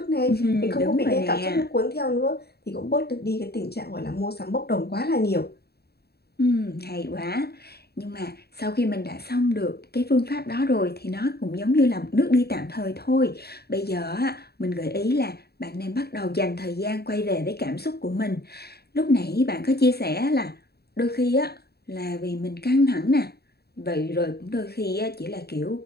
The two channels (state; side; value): late; right; 0.47 ms